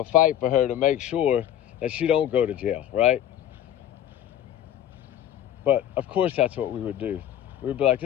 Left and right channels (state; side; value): quieter; right; 11.2 dB